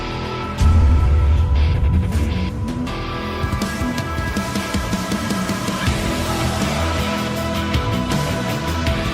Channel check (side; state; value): both; identical; correlation 1.00